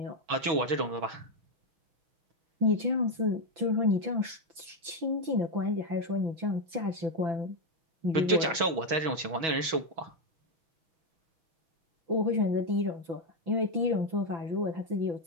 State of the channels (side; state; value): left; late; 6.2 ms